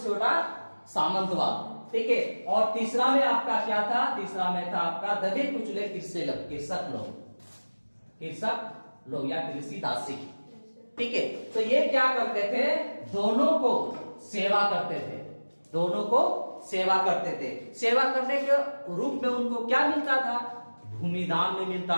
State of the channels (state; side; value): inverted; both; correlation -1.00